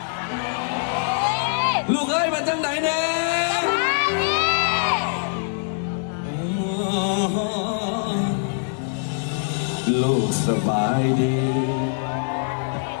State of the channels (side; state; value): right; silent; 63 dB below the other